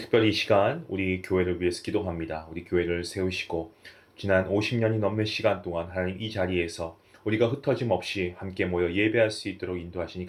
이 시간 우리 교회를 위해서 기도합니다. 우리 교회를 세우시고 지난 50년이 넘는 시간 동안 하나님 이 자리에서 우리가 흩어짐 없이 함께 모여 예배할 수 있도록 인도하시니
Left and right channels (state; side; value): identical; both; correlation 1.00